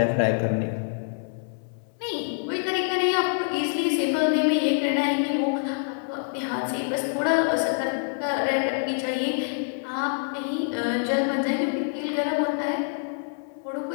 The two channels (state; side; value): silent; right; 61 dB below the other